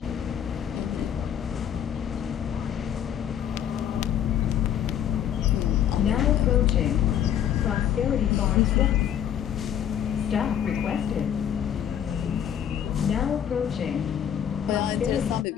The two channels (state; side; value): quieter; right; 9.7 dB